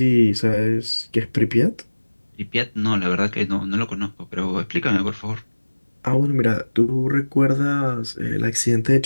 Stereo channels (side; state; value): both; inverted; correlation -1.00